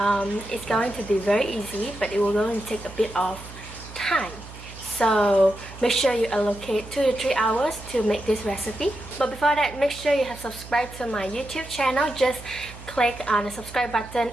It's going to be very easy, but it will going to take a bit of time. So make sure you allocate 2 to 3 hours to make this recipe. But before that, make sure you have subscribed to my YouTube channel. Just click on the subscribe button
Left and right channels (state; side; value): noise; right; hum, 15 dB below the sound